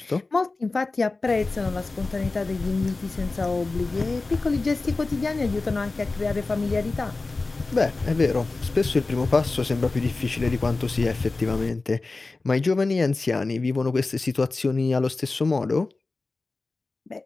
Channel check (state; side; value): quieter; right; 3.5 dB